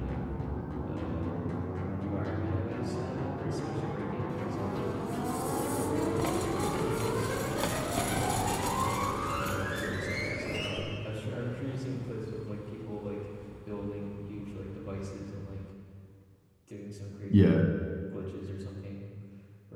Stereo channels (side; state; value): both; identical; correlation 1.00